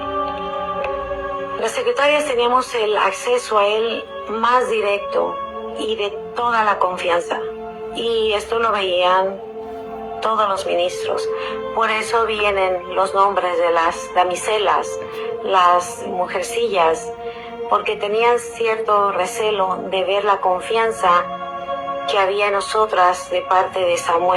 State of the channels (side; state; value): both; identical; correlation 1.00